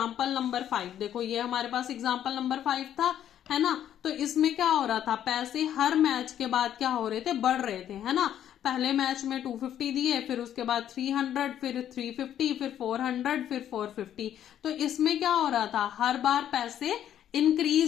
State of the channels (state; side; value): quieter; right; 10.6 dB